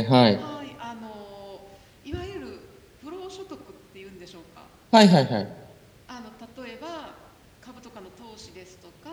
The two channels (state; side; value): identical; both; correlation 1.00